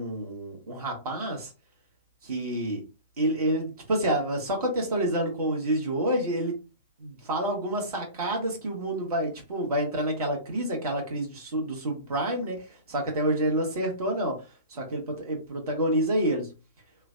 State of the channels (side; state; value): both; inverted; correlation -0.36